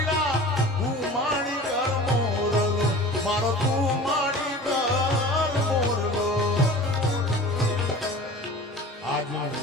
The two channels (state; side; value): normal; both; correlation 0.39